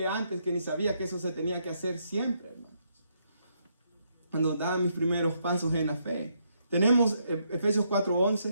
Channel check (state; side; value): inverted; both; correlation -0.76